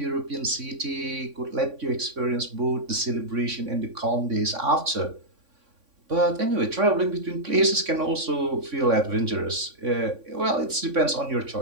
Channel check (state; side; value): late; left; 3.6 ms